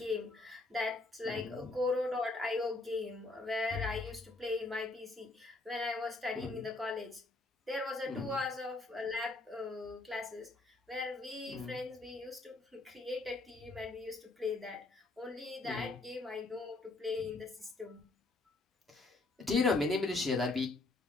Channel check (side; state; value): right; quieter; 3.1 dB